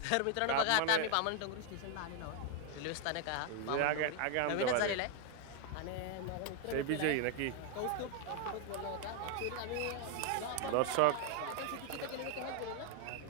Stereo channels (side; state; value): both; different; correlation 0.01